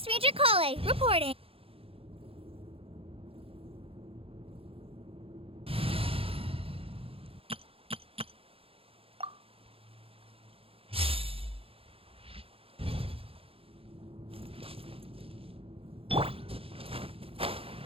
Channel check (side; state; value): left; late; 0.27 ms